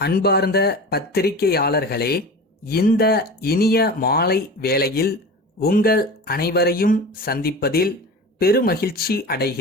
பத்திரிகையாளர்களே, இந்த இனிய மாலை வேளையில் உங்கள் அனைவரையும் சந்திப்பதில் பெருமகிழ்ச்சி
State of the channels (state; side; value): normal; both; correlation 0.33